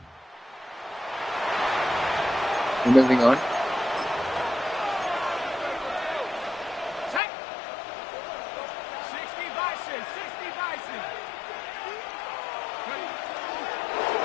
We're moving on.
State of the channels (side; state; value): right; drops out; at 7.2 s